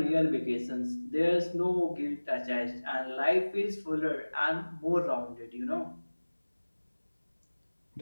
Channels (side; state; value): both; inverted; correlation -1.00